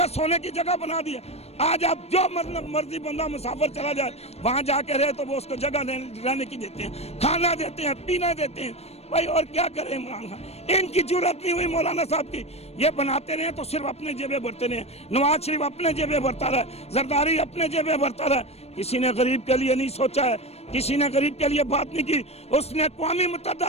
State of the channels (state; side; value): late; right; 0.30 ms